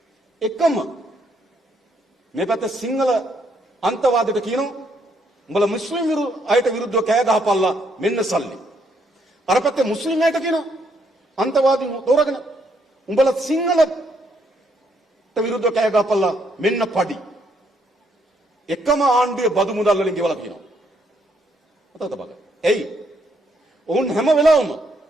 එකම මේ පැත්ත සිංහල අන්තවාදයට කියනවා උඹලා මුස්ලිම් අයට විරුද්ධව කෑ ගහපල්ලා මෙන්න සල්ලි. අර පැත්තේ මුස්ලිම් අයට කියනවා අන්තවාදීන් තෝරගෙන උඹලා සිංහලට විරුද්ධව කෑ ගහපල්ලා මෙන්න පඩි. එකම ආණ්ඩුවේ බදු මුදල් වලින් ගෙවලා කියනවා. මතකද බලන්න. එයි ඔවුන් හැම වෙලාවෙම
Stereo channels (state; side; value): normal; both; correlation 0.72